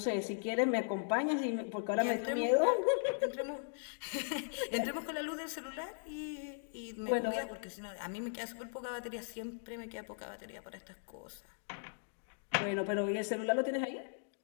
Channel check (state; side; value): silent; right; digital silence